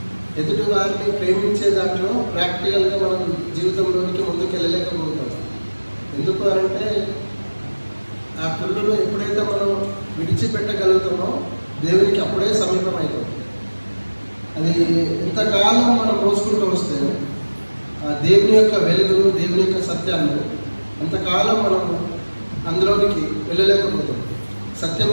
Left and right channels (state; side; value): inverted; both; correlation -1.00